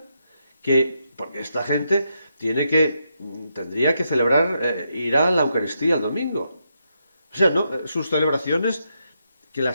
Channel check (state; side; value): inverted; both; correlation -0.81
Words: porque esta gente tendría que celebrar, ir a la Eucaristía el domingo. O sea, no, sus celebraciones que